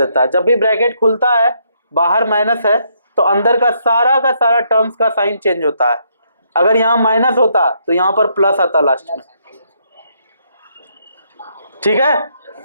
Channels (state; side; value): inverted; both; correlation -0.73